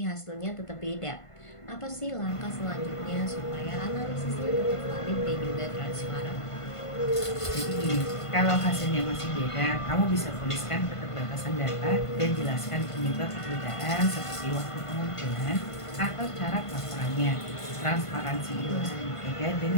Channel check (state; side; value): late; right; 1.5 ms